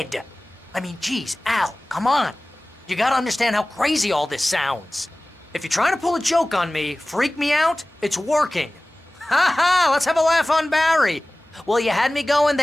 I mean, geez, Al, come on. You gotta understand how crazy all this sounds. If you're trying to pull a joke on me, freak me out, it's working. Ha ha, let's have a laugh on Barry. Well, you had me going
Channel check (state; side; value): normal; both; correlation 0.98